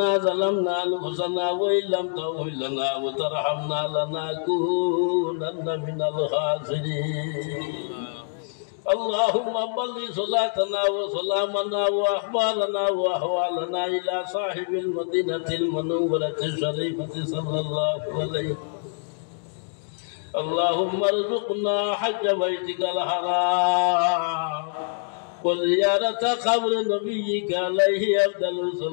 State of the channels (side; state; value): right; silent; digital silence